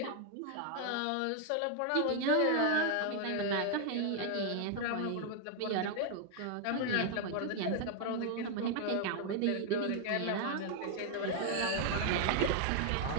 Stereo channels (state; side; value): different; both; correlation 0.00